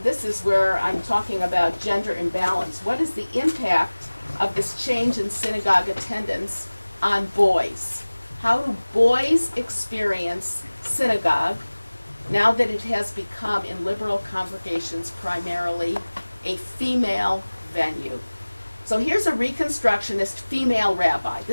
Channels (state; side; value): inverted; both; correlation -1.00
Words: this is where I'm talking about gender imbalance, what is the impact of this change in synagogue attendance on boys? How do boys experience synagogue now that it has become in liberal congregations primarily a female venue? So here's a Reconstructionist female rabbi.